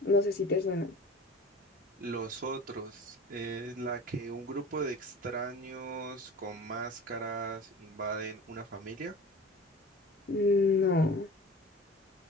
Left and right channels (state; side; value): normal; both; correlation 0.39